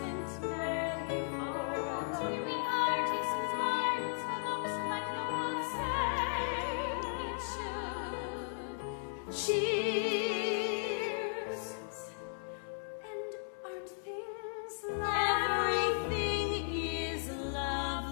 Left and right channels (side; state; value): right; silent; digital silence